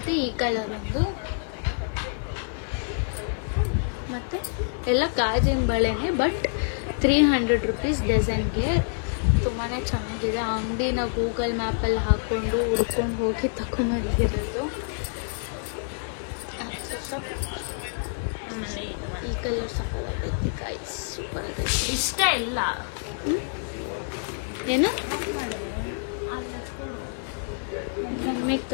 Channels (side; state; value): right; silent; digital silence